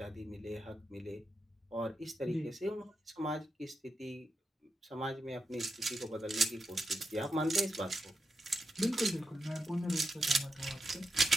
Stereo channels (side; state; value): both; normal; correlation 0.86